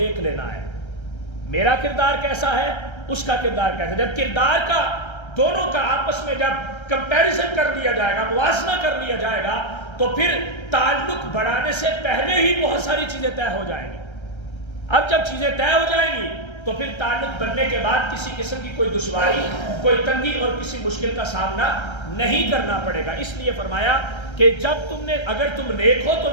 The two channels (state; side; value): late; right; 1.3 ms